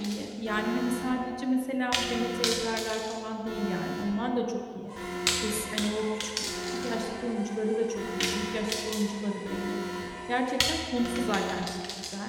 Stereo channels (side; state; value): both; identical; correlation 1.00